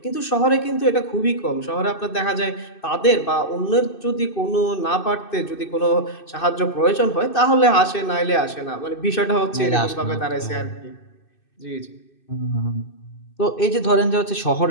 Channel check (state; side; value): late; right; 2.6 ms